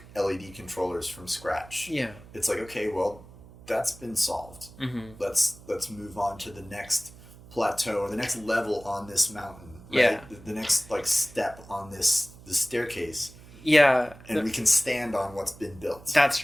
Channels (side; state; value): right; noise; hum, 20 dB below the sound